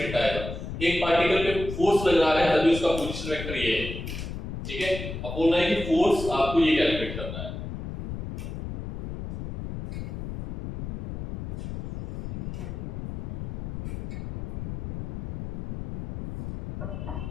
आएगा। एक पार्टिकल पे फोर्स लग रहा है तभी उसका पोजीशन वेक्टर ये है, ठीक है। अब बोलना है कि फोर्स आपको ये कैलकुलेट करना है।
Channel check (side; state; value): left; noise; rumble, 7 dB below the sound